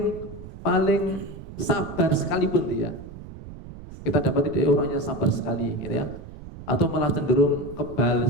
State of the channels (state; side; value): noise; right; rumble, 14 dB below the sound